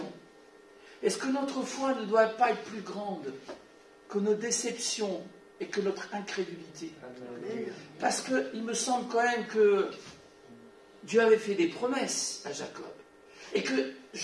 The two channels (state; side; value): identical; both; correlation 1.00